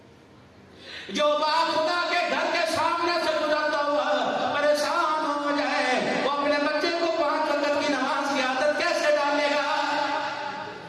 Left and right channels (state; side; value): identical; both; correlation 1.00